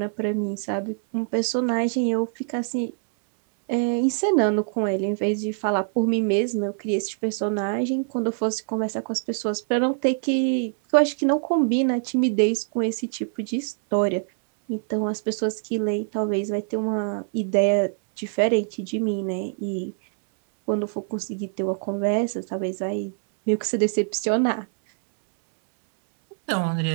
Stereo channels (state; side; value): silent; left; 62 dB below the other